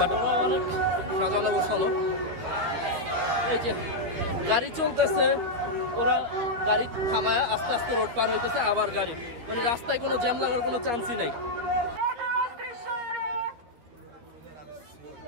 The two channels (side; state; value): left; late; 12 ms